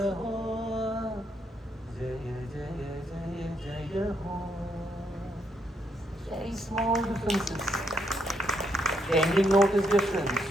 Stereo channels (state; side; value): normal; both; correlation 0.76